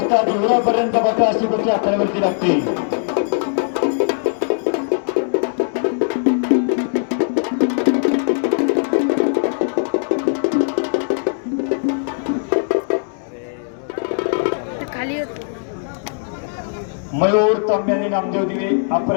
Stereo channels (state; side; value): silent; right; digital silence